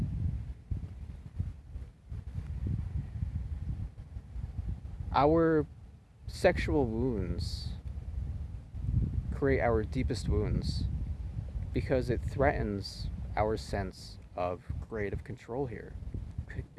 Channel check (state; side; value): identical; both; correlation 1.00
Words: Our sexual wounds create our deepest wounds because it threatens our sense of creative control here.